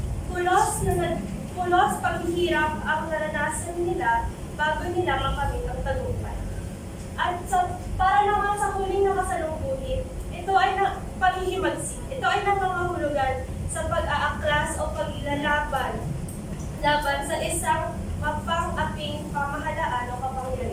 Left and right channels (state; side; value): identical; both; correlation 1.00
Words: Pulos paghihirap ang naranasan nila bago nila makamit ang tagumpay. At para naman sa huling nakasalumuhin, ito ay paghihimagsik. Ito ay nangangahulugan sa pag-aaklas o paglalaban sa isang